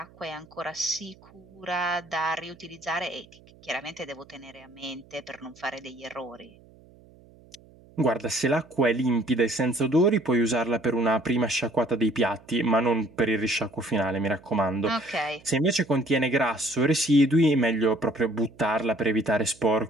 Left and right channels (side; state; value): right; noise; hum, 26 dB below the sound